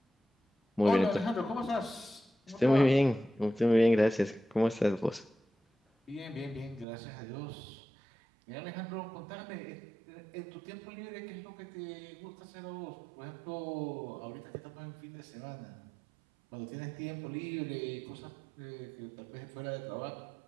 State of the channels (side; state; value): left; drops out; at 6.9 s